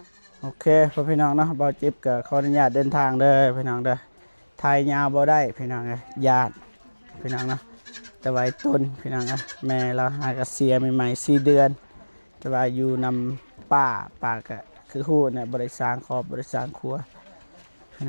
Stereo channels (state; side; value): inverted; both; correlation -1.00